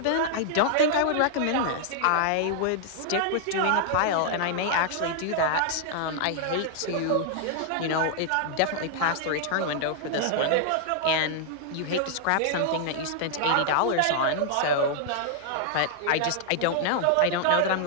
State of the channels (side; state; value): both; different; correlation 0.00